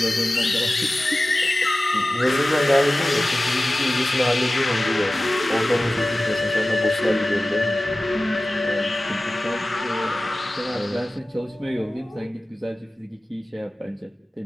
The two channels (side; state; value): both; normal; correlation 0.96